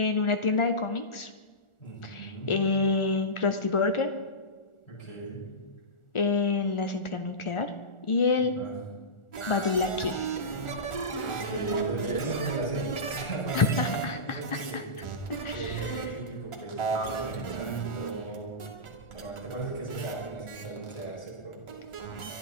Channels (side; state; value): right; late; 1.4 ms